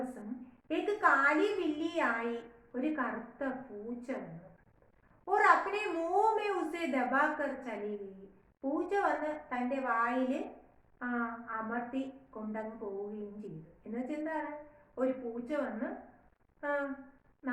കാലി ബില്ലിയായി ഒരു കറുത്ത പൂച്ച വന്നു. और अपने मुंह में उसे दबाकर चली गई. പൂച്ച വന്ന് തൻ്റെ വായിൽ അമർത്തി കൊണ്ടങ്ങ് പോവുകയും ചെയ്തു. എന്നുവെച്ചാൽ എന്താണ്? ഒരു പൂച്ച വന്ന്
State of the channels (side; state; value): both; identical; correlation 1.00